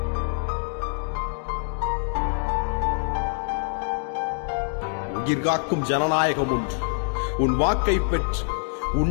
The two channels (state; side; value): silent; right; 62 dB below the other